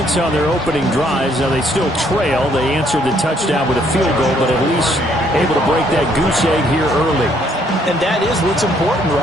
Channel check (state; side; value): normal; both; correlation 0.67